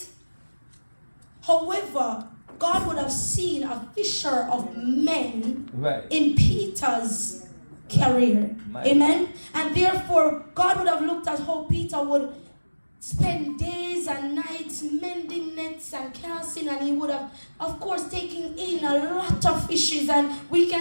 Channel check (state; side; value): inverted; both; correlation -1.00